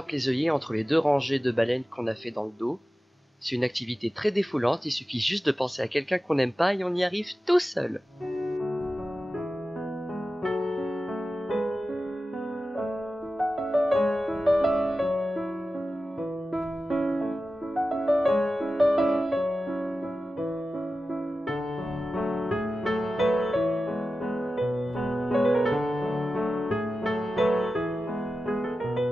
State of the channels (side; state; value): both; normal; correlation 0.94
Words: les œillets entre les deux rangées de baleines qu'on a fait dans le dos. C'est une activité très défoulante, il suffit juste de penser à quelqu'un qu'on n'aime pas et on y arrive tout seul.